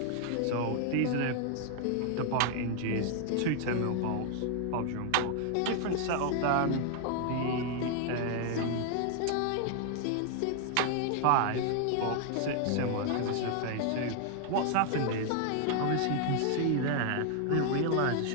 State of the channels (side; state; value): both; different; correlation 0.00